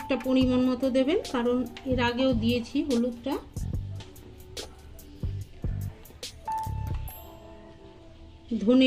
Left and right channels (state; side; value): identical; both; correlation 1.00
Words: পরিমাণ মতো দেবেন, কারণ এর আগেও দিয়েছি হলুদটা।